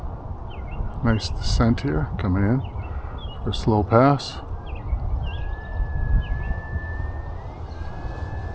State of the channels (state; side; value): identical; both; correlation 1.00